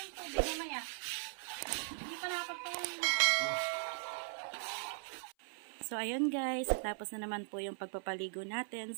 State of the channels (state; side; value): silent; left; 52 dB below the other